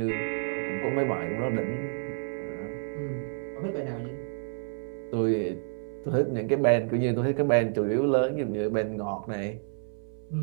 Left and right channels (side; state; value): left; silent; 58 dB below the other